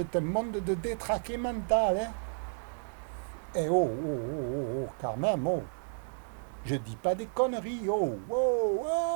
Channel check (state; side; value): silent; left; digital silence